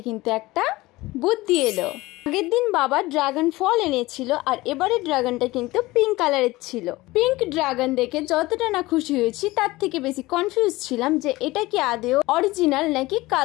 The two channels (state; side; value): quieter; right; 19.7 dB